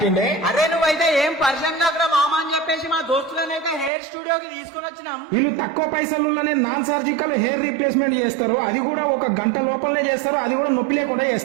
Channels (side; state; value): left; drops out; at 3.9 s